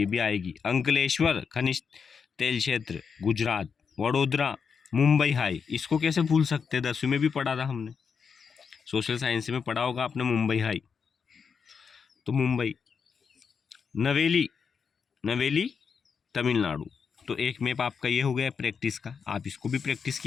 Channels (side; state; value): right; quieter; 6.1 dB